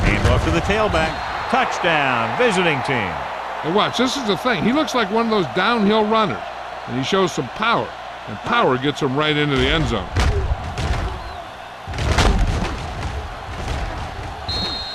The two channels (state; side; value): identical; both; correlation 1.00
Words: Hand off to the tailback. Touchdown, visiting team. And watch, this is the thing. He looks like one of those downhill runners, and he shows some power, and power gets him right into the end zone.